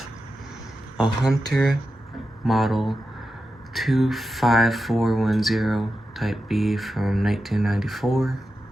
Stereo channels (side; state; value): both; normal; correlation 0.90